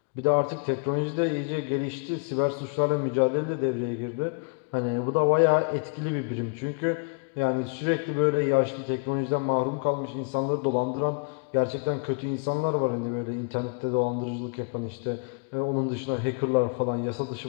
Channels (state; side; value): quieter; right; 34.9 dB